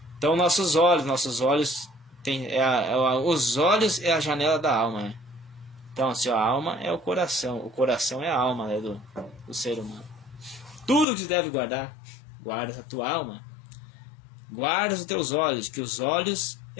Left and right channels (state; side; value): drops out; right; at 11.1 s